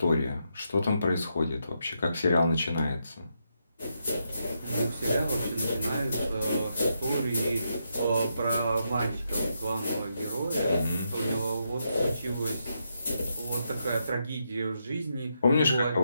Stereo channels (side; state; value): both; inverted; correlation -0.81